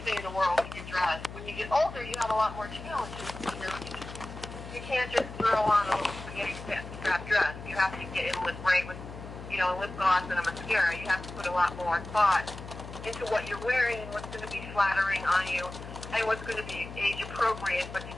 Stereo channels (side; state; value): left; noise; hum, 12 dB below the sound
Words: everything in the world when you dress. When you get older, you have a lot more challenges. You can't just throw on a little spaghetti strap dress. You have to get in with lip gloss and a mascara. You have to put a lot more thought into what you're wearing and what's going to be flattering on you and what's going to be age appropriate but